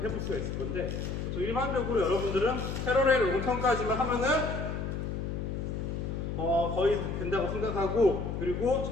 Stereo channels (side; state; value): left; noise; hum, 3 dB below the sound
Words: 수가 있을 건데, 보통 일반적으로 여러분들은 패러렐 롱턴까지만 하면은 거의 된다고 생각하고, 그리고